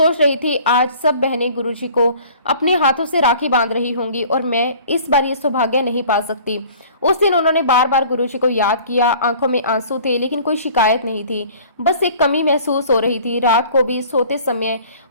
रही थी आज सब बहनें गुरुजी को अपने हाथों से राखी बांध रही होंगी और मैं इस बार ये सौभाग्य नहीं पा सकती। उस दिन उन्होंने बार बार गुरुजी को याद किया। आंखों में आंसू थे, लेकिन कोई शिकायत नहीं थी। बस एक कमी महसूस हो रही थी। रात को भी सोते समय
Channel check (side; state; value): both; inverted; correlation -0.49